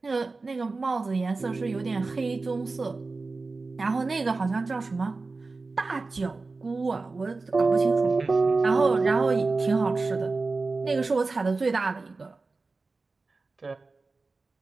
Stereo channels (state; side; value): quieter; left; 3.8 dB